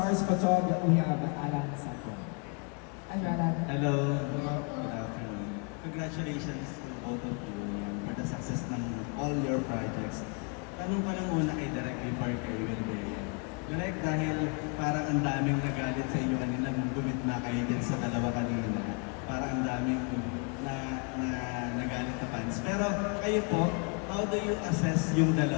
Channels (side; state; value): right; quieter; 36.2 dB